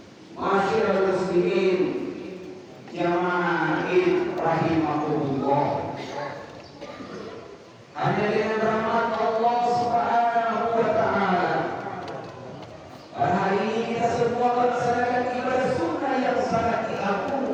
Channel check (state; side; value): identical; both; correlation 1.00